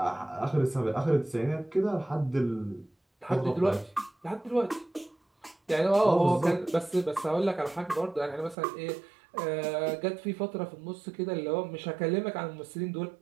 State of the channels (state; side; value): drops out; left; at 8.6 s